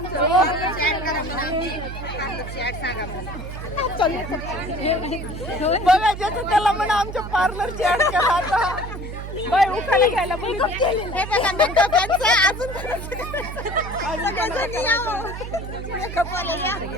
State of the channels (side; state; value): right; noise; hum, 8 dB below the sound